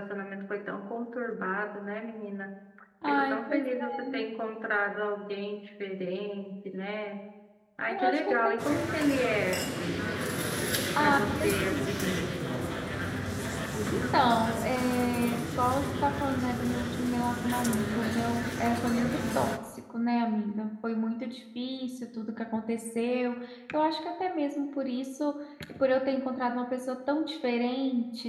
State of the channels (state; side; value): identical; both; correlation 1.00